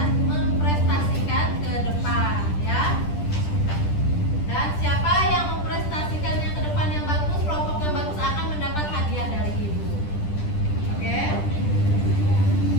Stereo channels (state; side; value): late; right; 10 ms